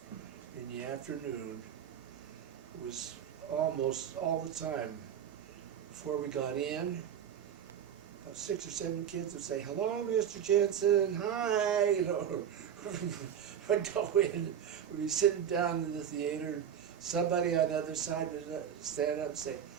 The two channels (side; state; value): left; quieter; 8.9 dB